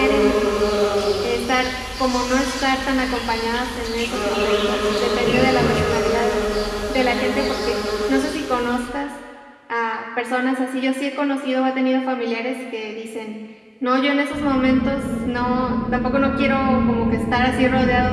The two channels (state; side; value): identical; both; correlation 1.00